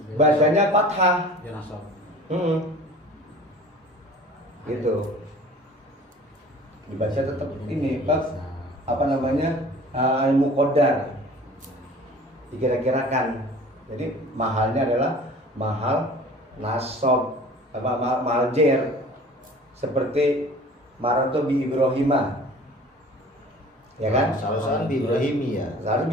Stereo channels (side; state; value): both; normal; correlation 0.45